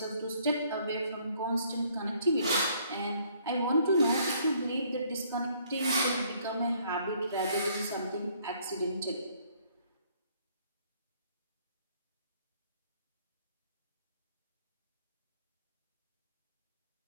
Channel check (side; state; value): both; inverted; correlation -0.64